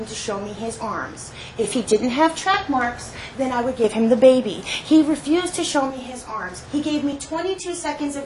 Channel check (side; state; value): both; identical; correlation 1.00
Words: to show me his arms. If he didn't have track marks, then I would give him the baby. He refused to show me his arms. He gave me 22 seconds of